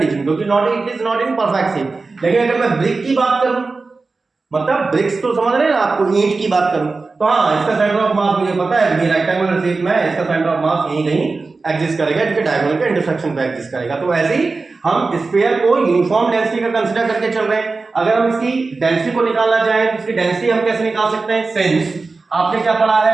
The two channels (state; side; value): quieter; left; 3.9 dB